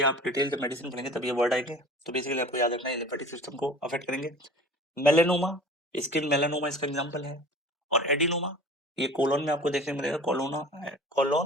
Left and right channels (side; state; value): both; normal; correlation 0.42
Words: आप डिटेल मेडिसिन पढ़ेंगे तब ये वर्ड आएंगे, तो बेसिकली आपको याद रखना है लिम्फेटिक सिस्टम को अफेक्ट करेंगे। मेलेनोमा, स्किन मेलानोमा इसका एग्जांपल है। और एडिनोमा, ये कोलोन में आपको देखने को मिलेगा,